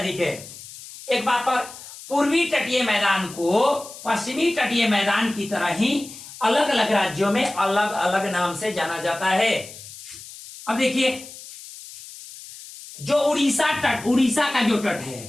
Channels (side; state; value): left; noise; hiss, 15 dB below the sound